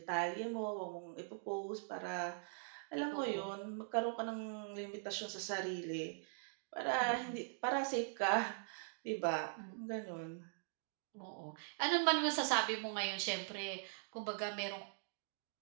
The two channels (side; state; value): left; silent; digital silence